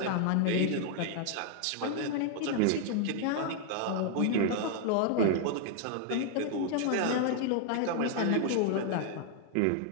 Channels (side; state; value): both; different; correlation 0.00